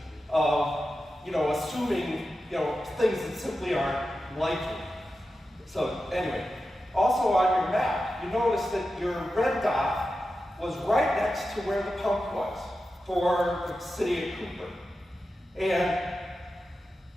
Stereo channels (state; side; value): normal; both; correlation 0.91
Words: of, assuming, things that simply aren't likely. So anyway, also on your map, you notice that your red dot was right next to where the pump was for the city of Cooper. And